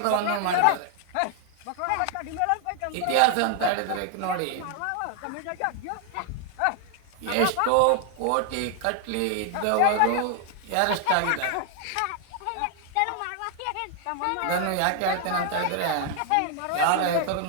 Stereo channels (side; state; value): both; different; correlation 0.00